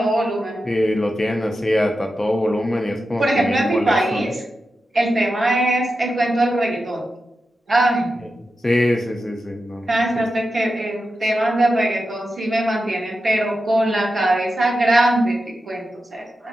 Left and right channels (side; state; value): both; normal; correlation 0.90